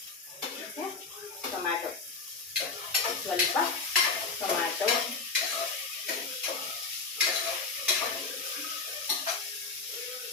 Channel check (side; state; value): right; quieter; 4.3 dB